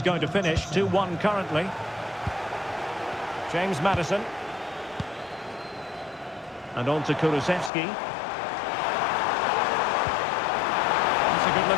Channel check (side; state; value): right; drops out; at 7.7 s